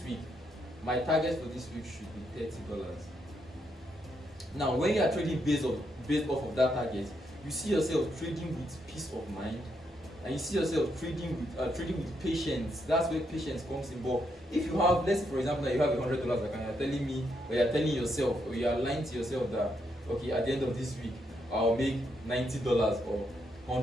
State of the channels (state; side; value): normal; both; correlation 0.78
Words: week my target for this week should be $30. Now, when you are trading based off of that target, you see yourself trading with peace of mind, and you see yourself trading with patience. That's where patience comes in. But if you have, let's say for example, you have a $100 account, you're telling me, or you're telling yourself, or you are lying to yourself that, okay, at the end of this week, I'll make $90 or